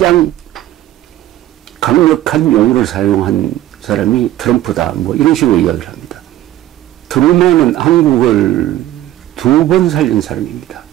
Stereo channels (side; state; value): left; quieter; 13.8 dB